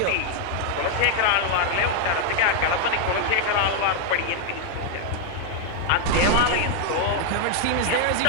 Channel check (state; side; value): different; both; correlation 0.00